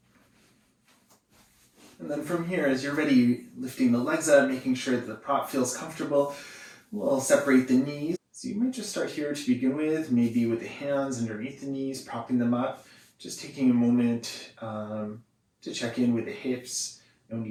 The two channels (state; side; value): identical; both; correlation 1.00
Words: And then from here, as you're ready, lifting the legs up, making sure that the prop feels comfortable, we'll separate the knees. So you might just start here to begin with, maybe with the hands underneath the knees, propping them up, just taking a moment to check in with the hips, no